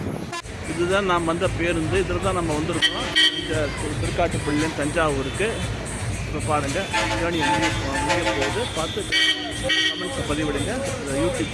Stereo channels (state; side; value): identical; both; correlation 1.00